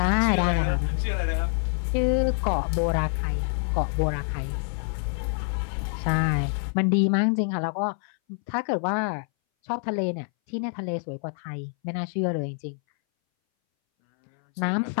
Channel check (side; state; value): right; silent; 60 dB below the other